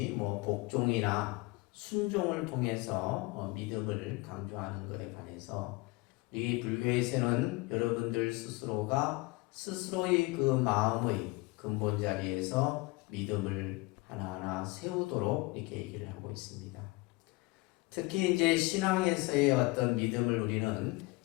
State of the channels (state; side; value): quieter; right; 23.8 dB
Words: 복종이나 순종을 통해서 믿음을 강조하는 것에 반해서 우리 불교에서는 여러분들 스스로가 스스로의 그 마음의 근본 자리에서 믿음을 하나하나 세우도록 이렇게 얘기를 하고 있습니다. 특히 이제 신앙에서의 어떤 믿음을 우리는